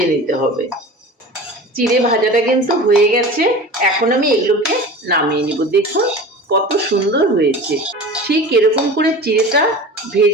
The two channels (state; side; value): normal; both; correlation 0.36